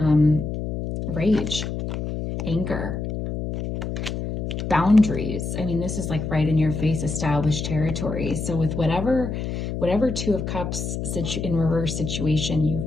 rage, anger, boundaries. I mean, this is like right in your face, established territory. So with whatever Two of Cups in reverse situation you've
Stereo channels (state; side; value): noise; left; hum, 4 dB below the sound